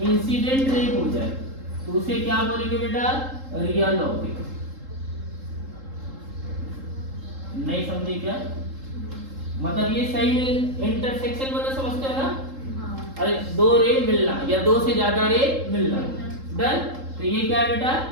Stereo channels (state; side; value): late; left; 3.7 ms